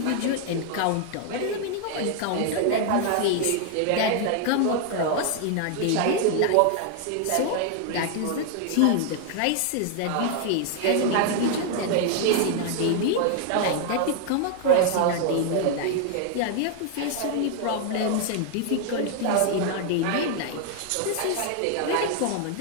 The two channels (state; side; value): different; both; correlation 0.00